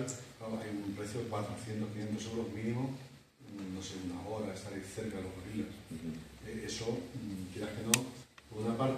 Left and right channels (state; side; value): identical; both; correlation 1.00